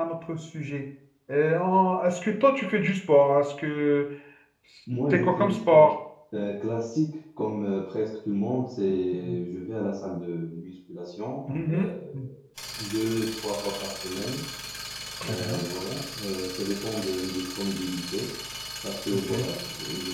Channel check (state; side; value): identical; both; correlation 1.00